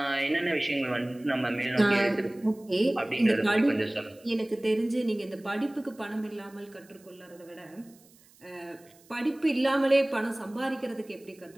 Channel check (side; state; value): right; noise; hiss, 28 dB below the sound